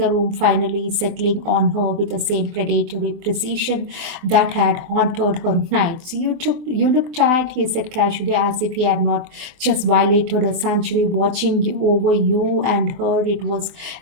room, finally settling on her with the same predatory precision that had haunted her nights. You look tired, he said casually, as if he had not just violated a century watching over you and her. It was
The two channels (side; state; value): left; late; 24 ms